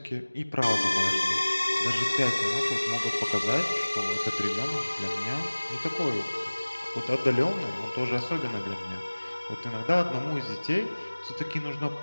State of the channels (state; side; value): inverted; both; correlation -1.00